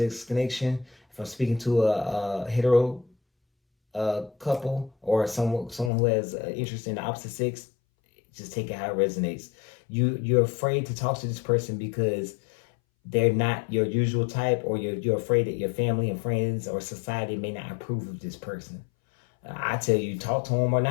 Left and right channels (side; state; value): right; drops out; at 5.9 s